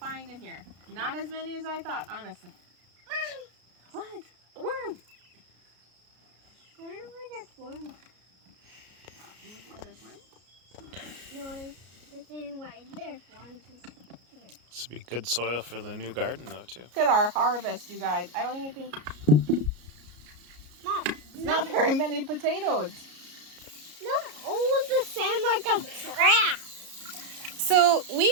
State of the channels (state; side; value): late; left; 33 ms